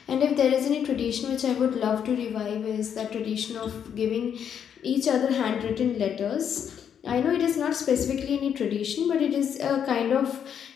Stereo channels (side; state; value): right; quieter; 8.3 dB